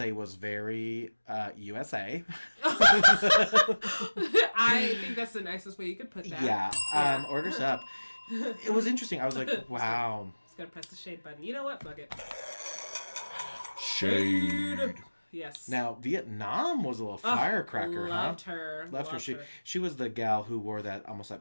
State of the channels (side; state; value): both; inverted; correlation -1.00